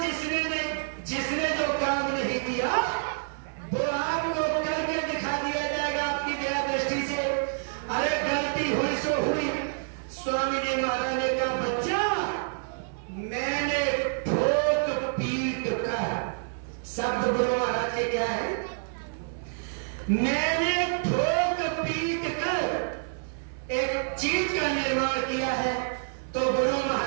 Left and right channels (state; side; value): silent; left; 59 dB below the other